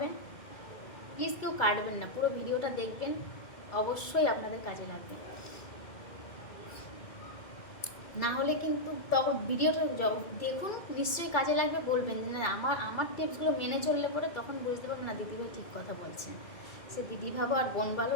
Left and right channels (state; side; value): late; right; 2.3 ms